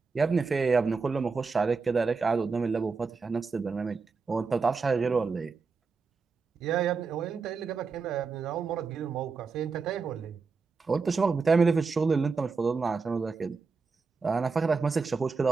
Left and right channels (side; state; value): left; quieter; 4.7 dB